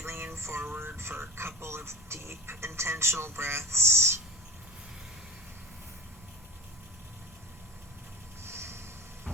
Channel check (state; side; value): normal; both; correlation 0.36